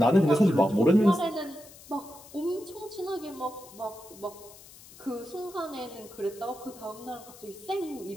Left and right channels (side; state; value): left; noise; hiss, 20 dB below the sound